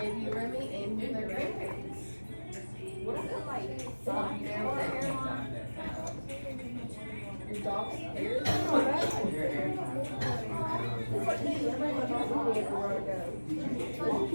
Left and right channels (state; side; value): inverted; both; correlation -1.00